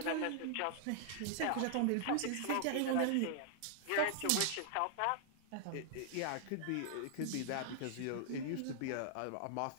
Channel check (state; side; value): different; both; correlation -0.01